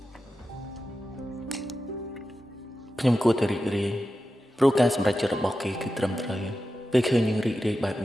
ខ្ញុំគួរតែរីករាយព្រោះការសម្រេចចិត្តរបស់គេគឺត្រឹមត្រូវពេលឃើញយើងរីករាយបែប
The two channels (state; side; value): normal; both; correlation 0.91